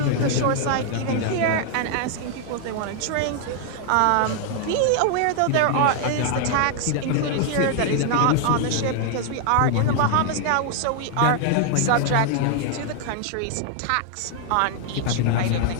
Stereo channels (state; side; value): different; both; correlation 0.00